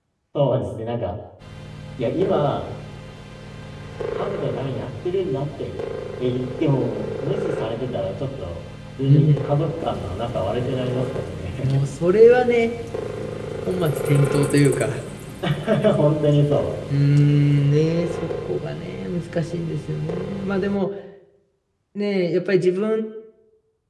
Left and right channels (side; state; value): both; identical; correlation 1.00